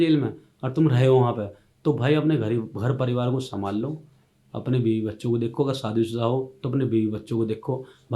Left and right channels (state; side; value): identical; both; correlation 1.00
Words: में और तुम रहे हो वहाँ पे, तो भाई अपने घर परिवार को संभाल लो, अपने बीवी बच्चों को देखो, अगर शादीशुदा हो तो अपने बीवी बच्चों को देखो।